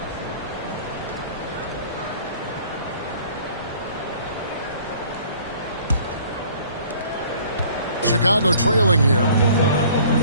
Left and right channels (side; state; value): both; inverted; correlation -0.53